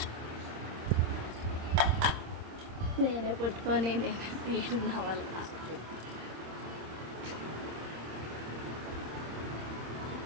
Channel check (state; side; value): late; left; 26 ms